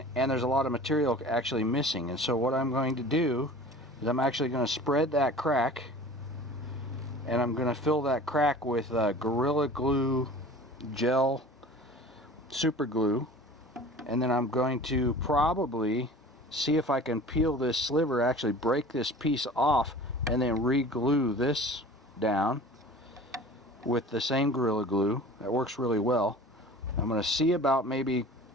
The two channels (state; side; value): normal; both; correlation 0.42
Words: there's a lot of material actually missing. And so what I'm going to do is I'm actually going to spread that crack, and I'm going to fill that crack with Gorilla Glue gel super glue, and then I'm going to probably see if I can peel this sliver, actually break this piece off, and then re-glue this down with the same Gorilla Glue. That works really well. I'm going to see about maybe